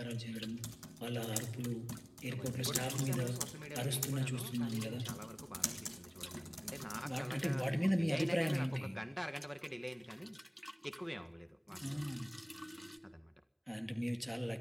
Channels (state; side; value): identical; both; correlation 1.00